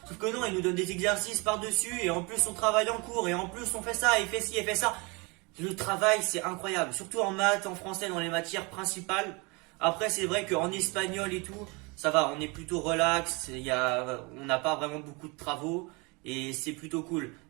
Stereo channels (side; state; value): left; quieter; 28.3 dB